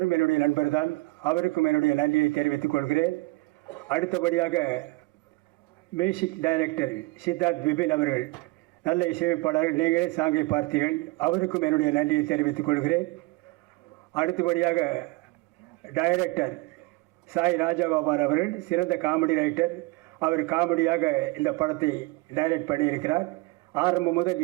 என்னுடைய நண்பர் தான், அவருக்கும் என்னுடைய நன்றியை தெரிவித்துக் கொள்கிறேன். அடுத்தபடியாக மியூசிக் டைரக்டர் சித்தார்த் விபின் அவர்கள், நல்ல இசையமைப்பாளர்கள், நீங்களே சாங்கை பார்த்தீர்கள், அவருக்கும் என்னுடைய நன்றியை தெரிவித்துக் கொள்கிறேன். அடுத்தபடியாக டைரக்டர் சாய் ராஜகோபால் அவர்கள், சிறந்த காமெடி ரைட்டர், அவர் காமெடியாக இந்த படத்தை டைரக்ட் பண்ணியிருக்கிறார். ஆரம்பம் முதல்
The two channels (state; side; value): quieter; left; 22.6 dB